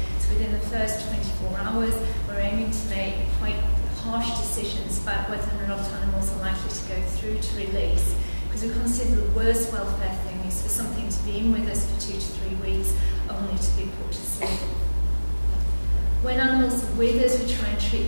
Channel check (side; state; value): both; inverted; correlation -1.00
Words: So within the first 24 hours, we're aiming to make quite harsh decisions about whether or not animals are likely to go through to release, because we consider the worst welfare thing is for something to be in with us for 2 to 3 weeks, only to be put to sleep. When animals are with us, we try and treat